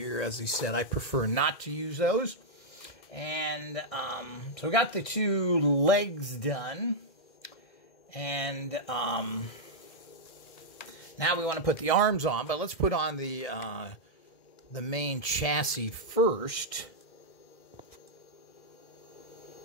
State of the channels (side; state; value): right; late; 2.1 ms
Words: As I said, I prefer not to use those. And so we got the 2 legs done. And now we want to put the arms on, but let's put on the main chassis first.